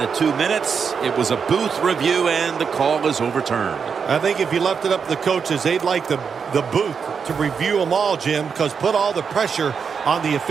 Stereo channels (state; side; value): quieter; left; 6.2 dB